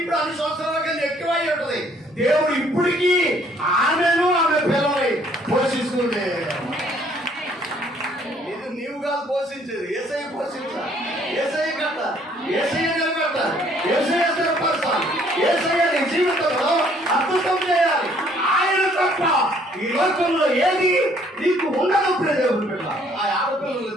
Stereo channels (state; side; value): normal; both; correlation 0.62